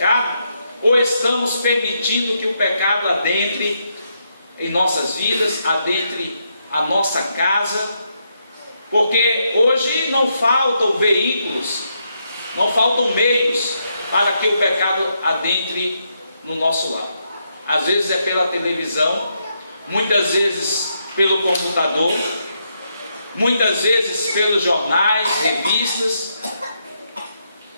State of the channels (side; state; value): both; inverted; correlation -0.79